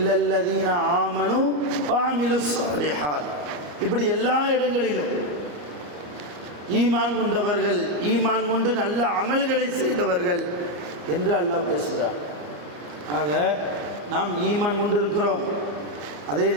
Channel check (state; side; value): late; left; 34 ms